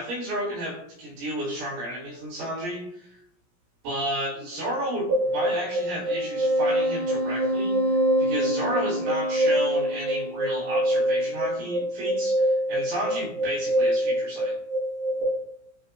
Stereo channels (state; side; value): late; left; 17 ms